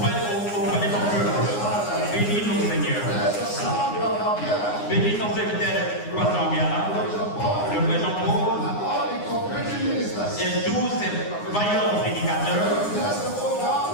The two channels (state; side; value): late; right; 9.7 ms